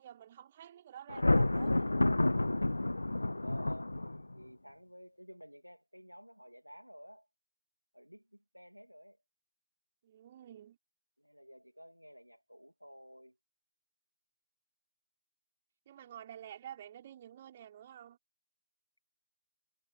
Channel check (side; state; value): both; inverted; correlation -0.99